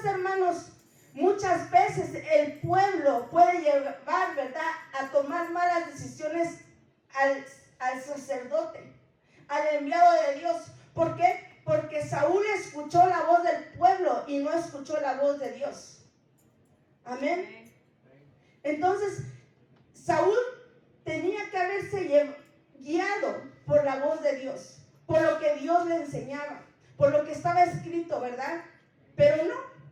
hermanos, muchas veces el pueblo puede llevar, ¿verdad?, a tomar malas decisiones al sacerdote, al enviado de Dios. ¿Por qué? Porque Saúl escuchó la voz del pueblo y no escuchó la voz de Dios. Amén. Entonces, Saúl tenía que haberse guiado por la voz de Dios, por lo que Dios le enseñaba, por lo que estaba escrito, ¿verdad? Pero no.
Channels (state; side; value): identical; both; correlation 1.00